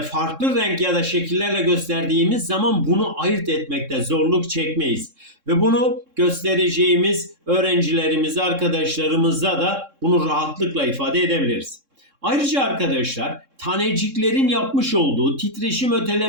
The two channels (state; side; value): late; left; 3.6 ms